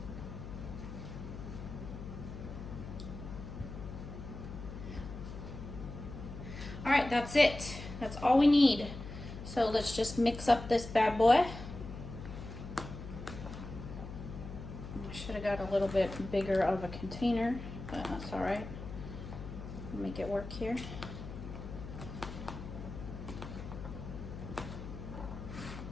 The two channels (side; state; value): left; noise; hum, 10 dB below the sound